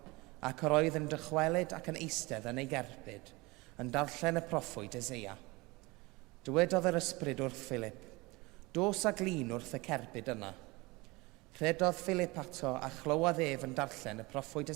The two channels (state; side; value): quieter; left; 23.6 dB